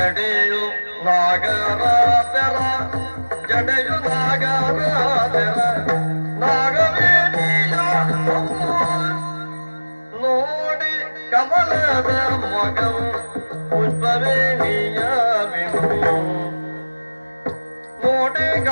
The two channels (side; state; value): both; inverted; correlation -1.00